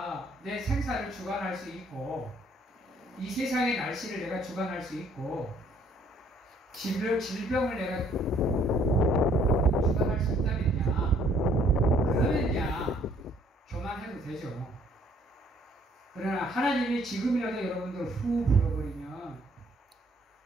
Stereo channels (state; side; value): normal; both; correlation 0.62